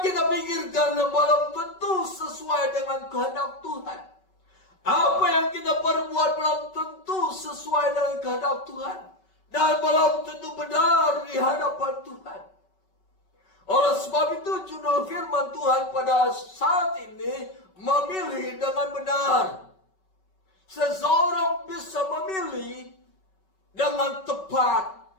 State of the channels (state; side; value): late; right; 5.3 ms